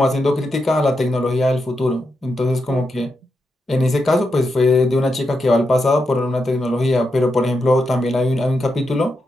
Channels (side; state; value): both; normal; correlation 0.85